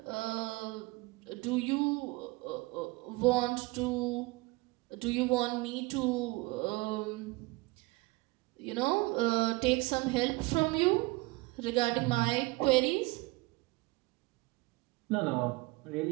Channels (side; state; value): left; quieter; 23.6 dB